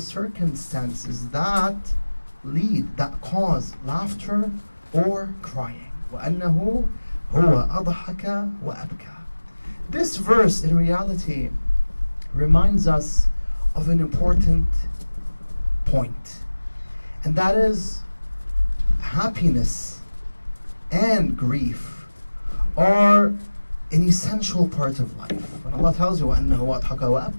that lead, that cause laughter or crying. وَأَنَّهُ هُوَ أَضْحَكَ وَأَبْكَى. This verse in reality reminds us of an important point, and that is happiness and grief are an essential part of life. When Allah tells you وَأَنَّهُ أَضْحَكَ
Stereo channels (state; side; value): inverted; both; correlation -1.00